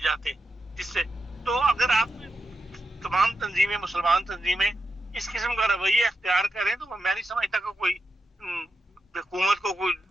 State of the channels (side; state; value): both; normal; correlation 0.86